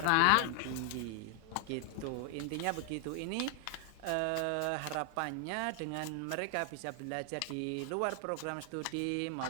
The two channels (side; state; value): both; different; correlation 0.00